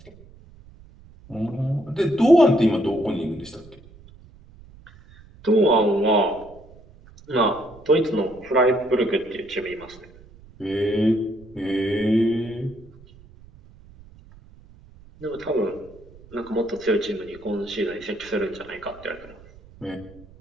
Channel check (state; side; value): noise; right; rumble, 23 dB below the sound